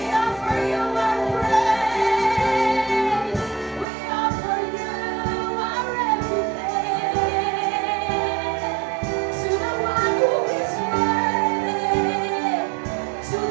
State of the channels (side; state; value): left; drops out; at 3.9 s